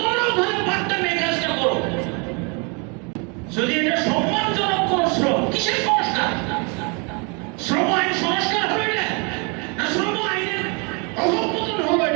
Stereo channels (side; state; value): left; quieter; 33.0 dB